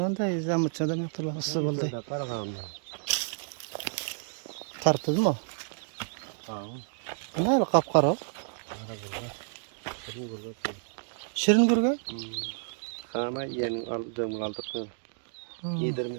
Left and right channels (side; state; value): left; silent; digital silence